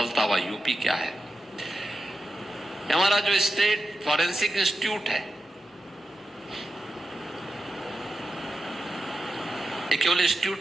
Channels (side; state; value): both; normal; correlation 0.90